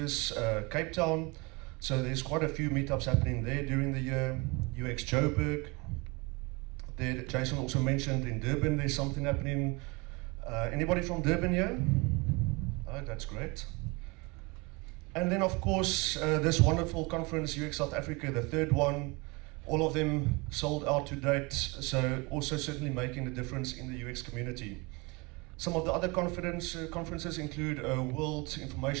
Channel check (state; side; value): quieter; left; 27.0 dB